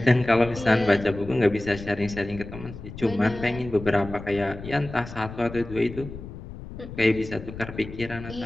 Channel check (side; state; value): left; noise; rumble, 12 dB below the sound